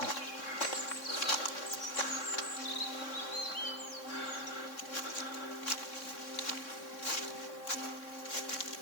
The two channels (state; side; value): late; right; 3.6 ms